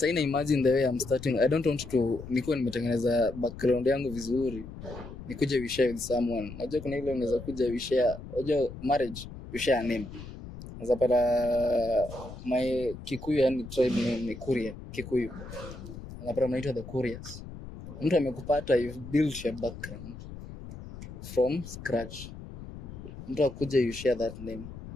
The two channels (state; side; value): noise; left; rumble, 13 dB below the sound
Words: imagine the way I'm starting. I don't want to nikuwa nimetengeneza background yangu vizuri. Nikuje we share with someone. Unajua kuna ile unaweza kuja we share. Unajua marriage we share name. Unaweza pata my Kikuyu yani tribe name ni Kuria, Kikuyu. Unapata mnaitwa the Kurias. Mtu amekupata, you've built your background from scratch. Mtu akuja you share that name.